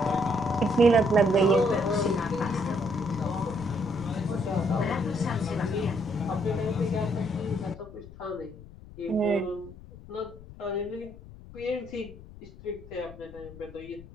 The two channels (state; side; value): noise; left; rumble, 18 dB below the sound